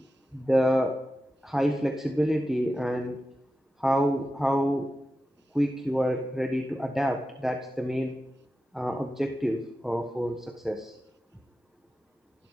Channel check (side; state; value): both; normal; correlation 0.92